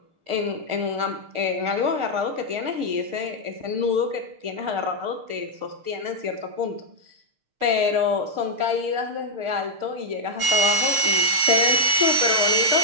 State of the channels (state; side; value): late; left; 6.6 ms